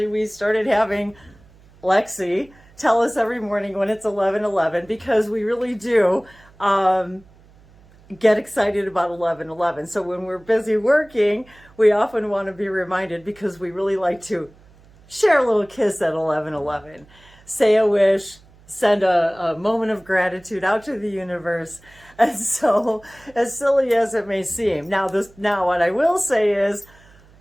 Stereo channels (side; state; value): right; noise; hum, 27 dB below the sound